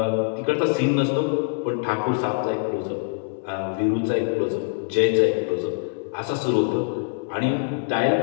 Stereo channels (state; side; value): silent; right; digital silence